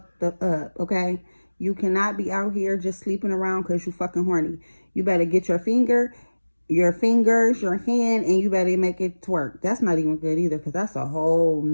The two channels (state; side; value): inverted; both; correlation -1.00